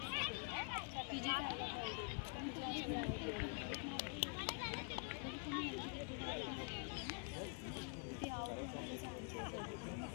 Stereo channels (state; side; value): quieter; right; 36.0 dB